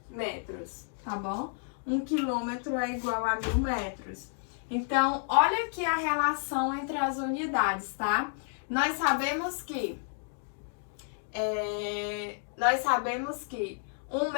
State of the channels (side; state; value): right; silent; 57 dB below the other